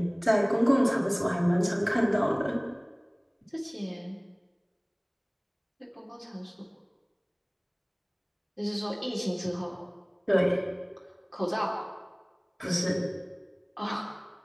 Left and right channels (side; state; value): both; identical; correlation 1.00